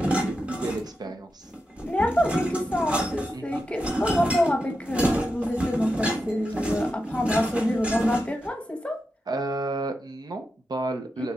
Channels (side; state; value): both; normal; correlation 0.88